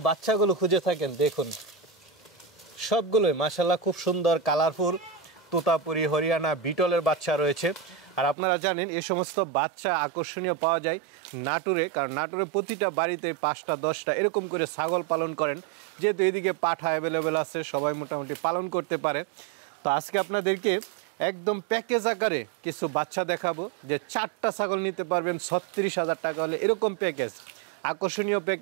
বাচ্চাগুলো খুঁজে থাকেন। দেখুন সবগুলোই মাশাআল্লাহ খুব সুন্দর কালারফুল তোতাপুরি, হরিয়ানা, বিটলের বাচ্চা রয়েছে। আর আপনারা জানেন এই সমস্ত বাচ্চা আকর্ষণীয় পাওয়া যায় নাটোরে, কারণ নাটোরে প্রতিটা বাড়িতে ৫টা ১০টা এরকম করে ছাগল পালন করেন, যেহেতু এদিকে পাঠা অ্যাভেলেবেল আছে, সবাই মোটামুটি পালন করতে পারে। তো আজকে আপনাদেরকে একদম প্যাকেজ আকারে কিছু বাচ্চা দেখাবো, যে 4টা ছাগল নিতে পারবেন ৩৬,০০০ টাকা হলে, এরকম প্যাকেজ, আকর্ষণীয়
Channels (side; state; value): left; drops out; at 8.3 s